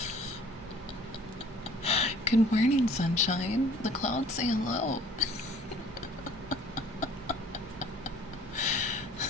Good morning, sunshine. The clouds say hello.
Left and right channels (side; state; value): both; normal; correlation 0.53